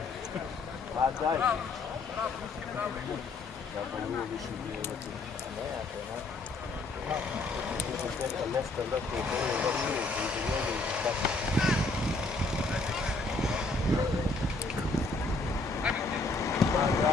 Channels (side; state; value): right; quieter; 3.3 dB